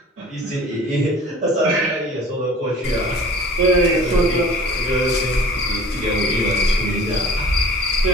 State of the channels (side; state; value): both; normal; correlation 0.45